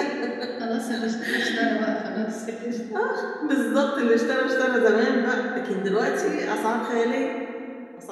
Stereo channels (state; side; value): identical; both; correlation 1.00